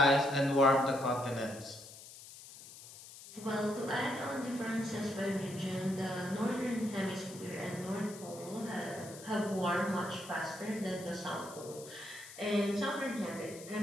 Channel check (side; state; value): left; noise; hiss, 16 dB below the sound